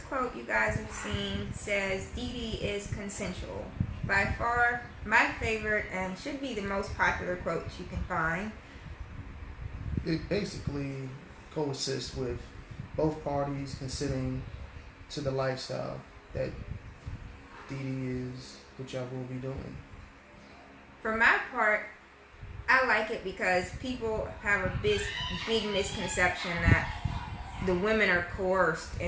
quote you guys have seen says, DD is consensual. By far, my favorite and should be the most popular quote you can find. It basically coexists with both parties considering to the lifestyle that DD is, what y'all will be doing. For my part, I like it because people have a big misconception that the women are coerced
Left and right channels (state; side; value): identical; both; correlation 1.00